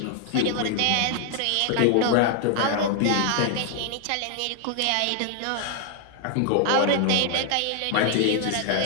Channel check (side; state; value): both; different; correlation 0.00